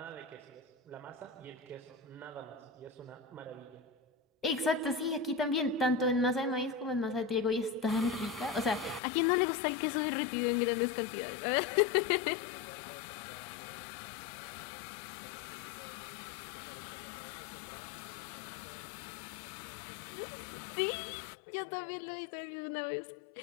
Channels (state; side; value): drops out; right; at 9.0 s